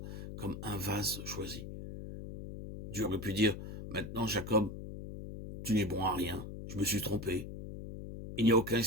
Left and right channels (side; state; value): left; noise; hum, 9 dB below the sound